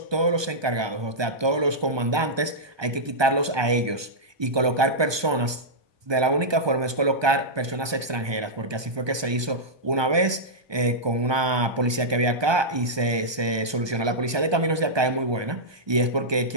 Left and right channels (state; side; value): late; left; 1.2 ms